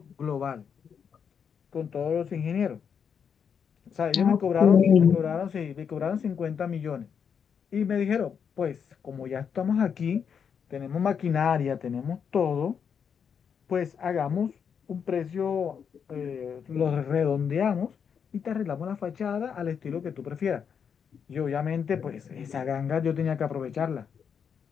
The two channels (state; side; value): quieter; right; 7.1 dB